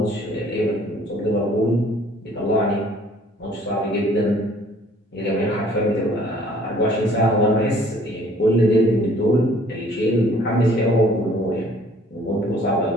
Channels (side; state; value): both; normal; correlation 0.56